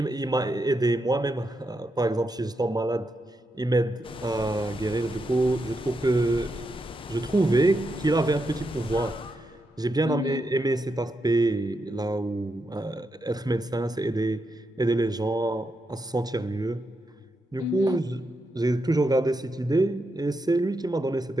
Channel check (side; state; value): both; normal; correlation 0.84